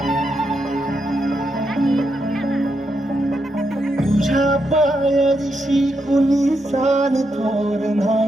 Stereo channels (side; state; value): both; normal; correlation 0.82